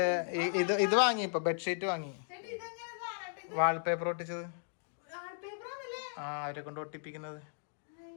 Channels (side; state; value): right; silent; digital silence